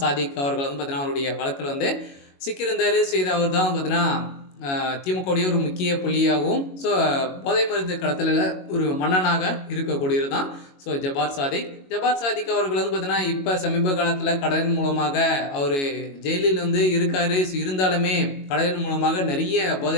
சாதிக் அவர்கள் பார்த்தீங்கன்னா அவருடைய வழக்கில் சிக்கியிருந்தார். இது அவர் தான் பார்த்தீங்கன்னா திமுகவுடைய ஒரு முக்கிய புள்ளியாகவும் போதை மருந்து கடத்தலில் ஒரு மன்னனாக இருக்கக்கூடியது தான் ஜபார் சாதிக் அவர்கள் பார்த்தீங்கன்னா இப்போ சமீப காலத்தில் கடலின் மூலமாக அவர் ஜெயிலில் இருக்கார். இருந்தாலுமே கடலின் மூலமாக நிறைய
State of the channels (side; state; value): right; late; 22 ms